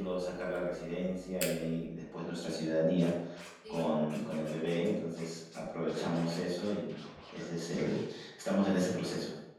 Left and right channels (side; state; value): both; identical; correlation 1.00